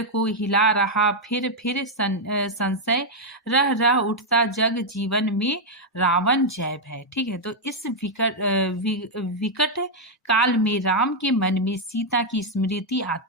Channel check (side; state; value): both; normal; correlation -0.01